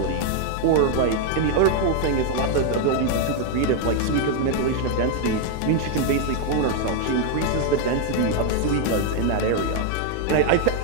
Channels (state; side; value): different; both; correlation 0.00